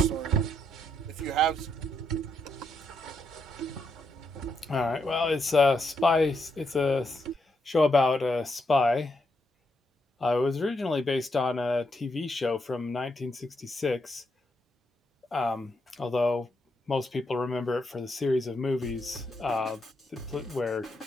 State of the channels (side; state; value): both; normal; correlation 0.79